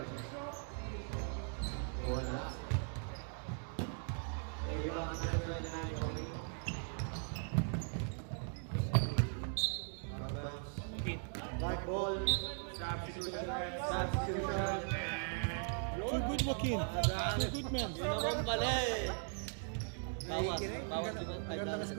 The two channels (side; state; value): left; silent; 52 dB below the other